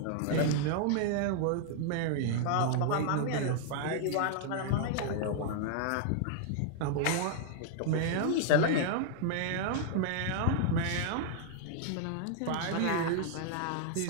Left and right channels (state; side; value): different; both; correlation -0.01